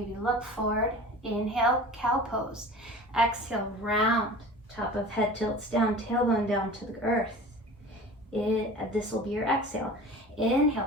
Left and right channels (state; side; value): normal; both; correlation 0.39